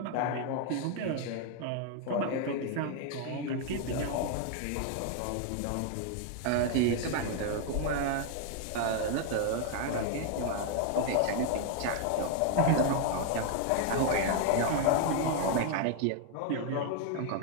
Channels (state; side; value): different; both; correlation 0.00